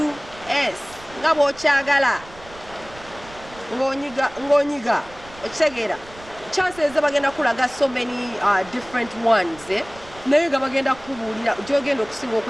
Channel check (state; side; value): noise; right; rumble, 20 dB below the sound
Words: Ngabo chagala. Ngonyiga. Ochegera. Chances bagenda kulaga so many different ones. Naye bagenda kubulira jogenda okusinga